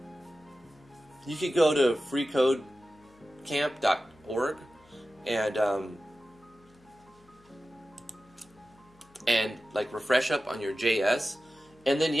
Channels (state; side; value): noise; left; hum, 30 dB below the sound